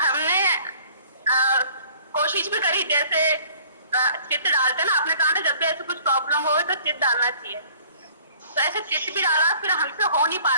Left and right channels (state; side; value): inverted; both; correlation -0.53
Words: कोशिश भी करी, जैसे चित्त डालते ना, आपने कहा ना जब भी ऐसे कुछ प्रॉब्लम हो तो चित्त डालना चाहिए, तो ऐसे चित्त भी डाला, फिर हमसे हो नहीं पा